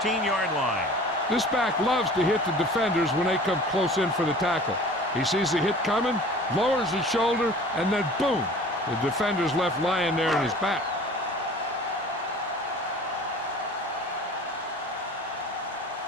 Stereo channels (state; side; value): normal; both; correlation 0.44